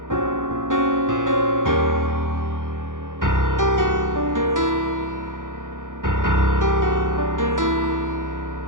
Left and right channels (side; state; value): left; late; 0.88 ms